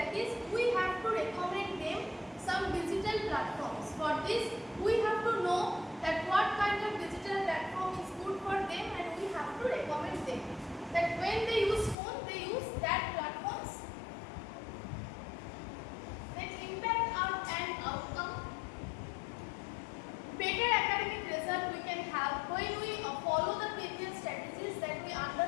is we have to recommend them some digital platforms. For this we have to know that what kind of digital platform is good for them, and we have to recommend them that when they use phone, they use that platforms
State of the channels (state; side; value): drops out; right; at 12.0 s